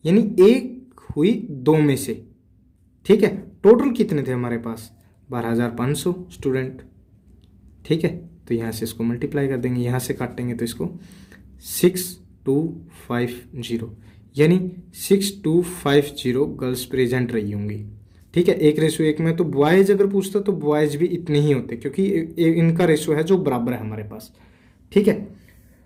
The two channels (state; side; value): identical; both; correlation 1.00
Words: यानी 1 हुई 2 में से। ठीक है, टोटल कितने थे हमारे पास 12,500 स्टूडेंट। ठीक है, तो यहाँ से इसको मल्टीप्लाई कर देंगे, यहाँ से काटेंगे तो इसको 6250, यानी 6250 गर्ल्स प्रेजेंट रही होंगी। ठीक है, 1:1 में। तो बॉयज़ अगर पूछता तो बॉयज़ भी इतने ही होते, क्योंकि इनका रेशो है जो बराबर है हमारे पास। ठीक है,